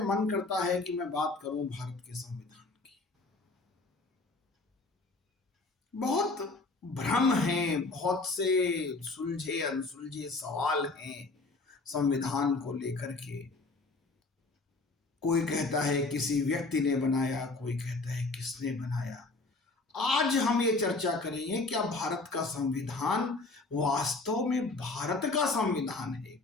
करता है कि मैं बात करूं भारत के संविधान की। बहुत भ्रम हैं, बहुत से सुलझे अनसुलझे सवाल हैं संविधान को लेकर के। कोई कहता है किसी व्यक्ति ने बनाया, कोई कहता है किसने बनाया। आज हम ये चर्चा करेंगे, क्या भारत का संविधान वास्तव में भारत का संविधान है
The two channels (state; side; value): quieter; right; 3.5 dB